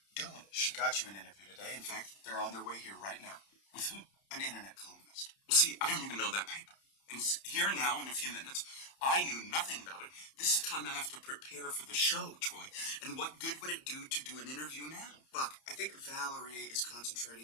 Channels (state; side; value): late; right; 30 ms